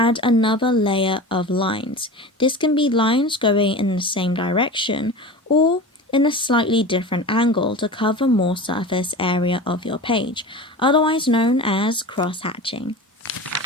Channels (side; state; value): both; normal; correlation 0.32